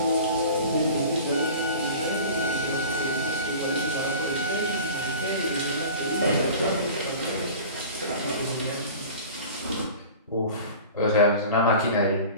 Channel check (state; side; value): inverted; both; correlation -0.40